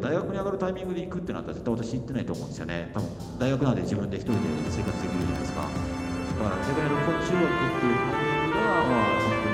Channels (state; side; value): identical; both; correlation 1.00